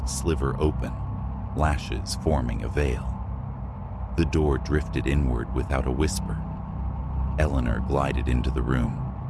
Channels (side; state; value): both; identical; correlation 1.00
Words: sliver open, lashes forming a veil. The door drifted inward without a whisper. Eleanor glided into the room,